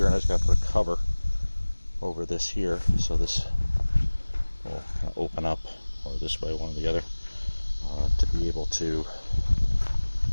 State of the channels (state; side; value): inverted; both; correlation -1.00